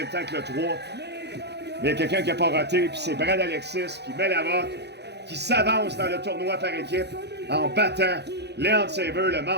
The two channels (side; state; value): left; late; 0.49 ms